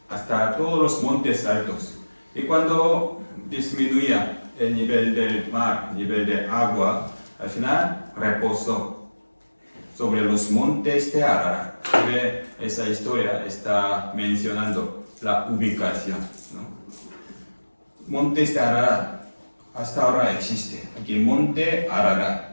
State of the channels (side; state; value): both; inverted; correlation -1.00